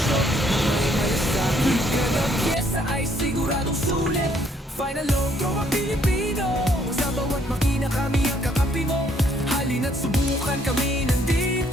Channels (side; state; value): both; normal; correlation 0.67